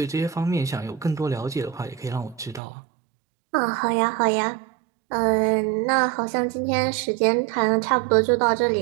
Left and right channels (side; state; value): left; drops out; at 2.6 s